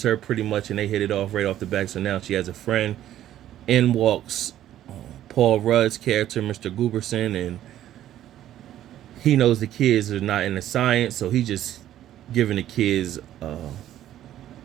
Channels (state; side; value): quieter; left; 12.3 dB